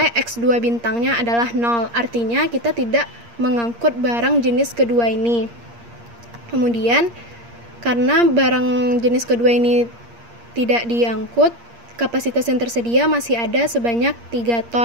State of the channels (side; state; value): left; late; 8.6 ms